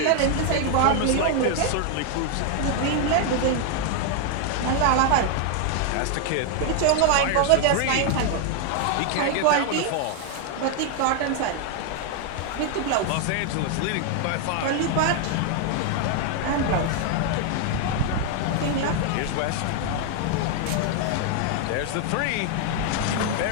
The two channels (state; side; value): different; both; correlation 0.00